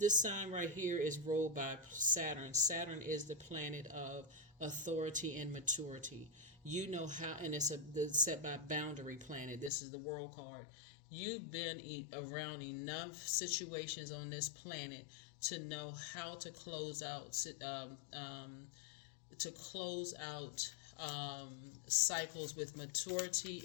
sign right here is ruled by Saturn. Saturn is the planet of authority and maturity. You know how, and it's set by boundary planet. This is the world card. You've been around enough situations on this planet to know how to close out cycles with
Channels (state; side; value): drops out; right; at 9.7 s